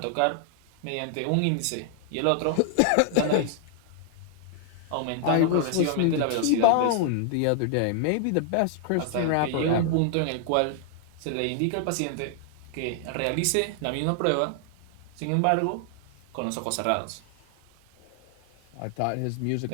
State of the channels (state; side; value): different; both; correlation 0.00